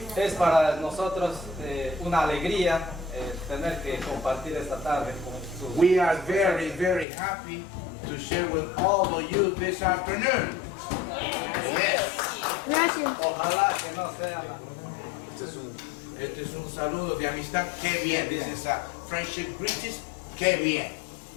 Es para nosotros una alegría tener que compartir esta tarde con sus... We are very, very happy to share with all of you this afternoon. Yes. Ojalá que no sea la... Este es un saludo de amistad. Qué bien. This is a friendship greetings. Qué bien.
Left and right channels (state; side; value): drops out; right; at 7.1 s